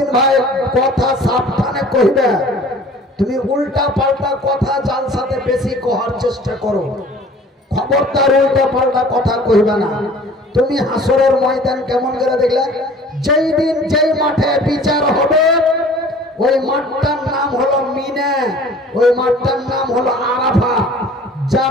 ভাই কথা সাবধানে কইবে, তুমি উল্টা পাল্টা কথা যার সাথে বেশি কহার চেষ্টা করো। খবরদার উল্টা পাল্টা কথা কইবে না। তুমি হাসরের ময়দান কেমন করে দেখলে? যেই দিন যেই মাঠে বিচার হবে ওই মাঠটার নাম হলো মিনা, ওই মাঠটার নাম হলো আরাফা।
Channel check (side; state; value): both; normal; correlation 0.48